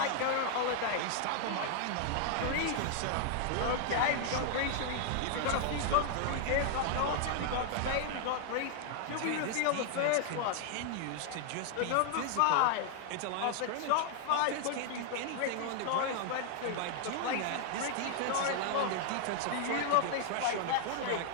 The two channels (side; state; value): both; different; correlation 0.00